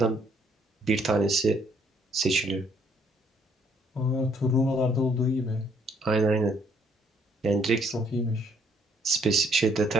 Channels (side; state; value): both; normal; correlation 0.67